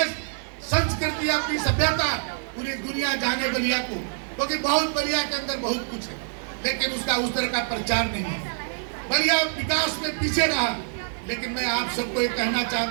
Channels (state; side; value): silent; left; 55 dB below the other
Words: संस्कृति अपनी सभ्यता पूरी दुनिया जाने बलिया को, क्योंकि बहुत बलिया के अंदर बहुत कुछ है लेकिन उसका उस तरह का प्रचार नहीं है। बलिया विकास में पीछे रहा। लेकिन मैं आप सबको ये कहना